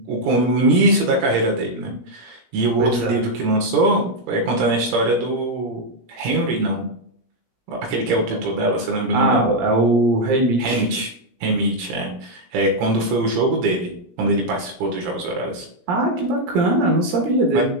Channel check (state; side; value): late; left; 17 ms